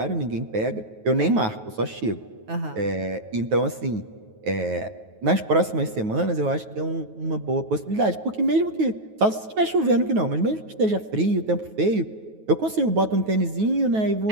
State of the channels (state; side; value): late; left; 9.3 ms